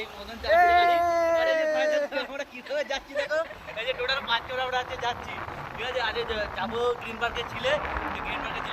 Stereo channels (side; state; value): both; identical; correlation 1.00